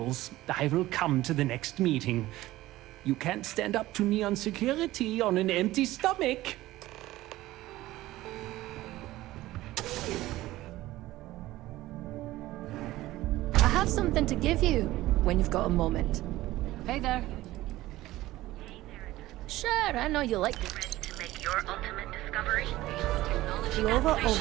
I will come to the next meeting. You can't stand up to Neon Security on an empty stomach. I have something to give you when you've got a moment. Hey there. Sure, I know you like it. Ready to make your ultimate discovery? Lova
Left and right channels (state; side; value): quieter; left; 16.7 dB